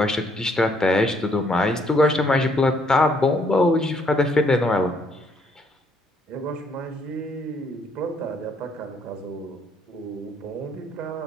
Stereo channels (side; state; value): both; normal; correlation 0.68